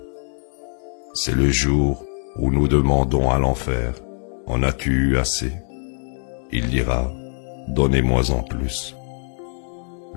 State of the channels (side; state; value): right; silent; digital silence